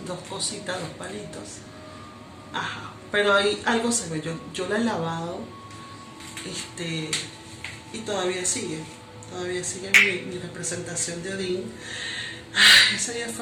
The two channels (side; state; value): both; identical; correlation 1.00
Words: cositas, dos palitos. Ajá, pero ahí algo se ve. Yo la he lavado, y todavía sigue mi representación de Odín. Ese día